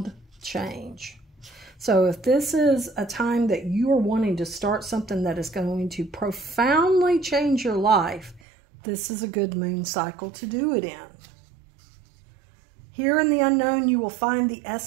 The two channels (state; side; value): drops out; left; at 8.4 s